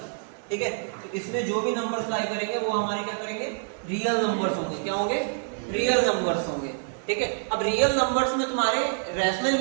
ठीक है। तो इसमें जो भी नंबर्स लाई करेंगे वो हमारे क्या करेंगे, रियल नंबर्स होंगे। क्या होंगे, रियल नंबर्स होंगे, ठीक है। अब रियल नंबर्स में तुम्हारे रैशनल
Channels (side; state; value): left; silent; digital silence